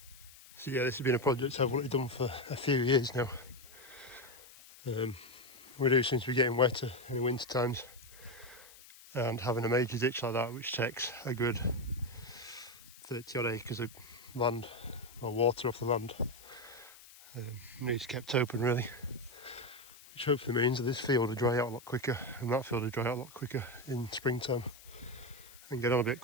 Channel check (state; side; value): noise; left; hiss, 20 dB below the sound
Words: So yeah, this has been a project I've wanted done for a few years now. We do seem to be getting wetter in the winter times, and having a major ditch like that, which takes a good 30 odd acres of land or water off the land, needs kept open really, which hopefully means that this field will dry out a lot quicker and that field will dry out a lot quicker in springtime and get on a bit